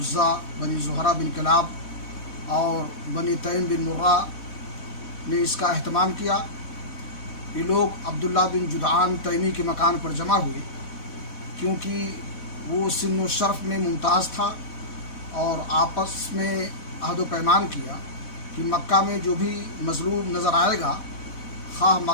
بنی زہرہ بن کلاب اور بنی تیم بن مرہ نے اس کا اہتمام کیا. یہ لوگ عبداللہ بن جدعان تیمی کے مکان پر جمع ہوئے کیونکہ وہ سن و شرف میں ممتاز تھا، اور آپس میں عہد و پیمان کیا کہ مکہ میں جو بھی مظلوم نظر آئے گا، خواہ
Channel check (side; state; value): right; late; 4.1 ms